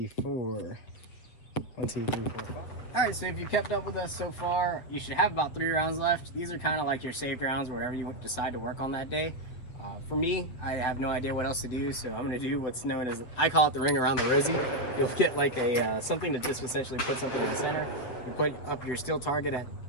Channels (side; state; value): right; late; 8.2 ms